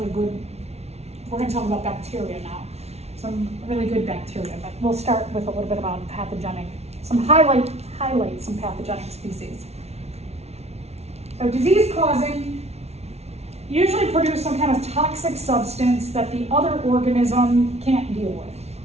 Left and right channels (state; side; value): late; left; 0.31 ms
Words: good, we're going to talk about bacteria now. Some really good bacteria, but we'll start with a little bit about pathogenic highlight some pathogenic species. So disease causing usually produce some kind of toxic substance that the other organism can't deal with.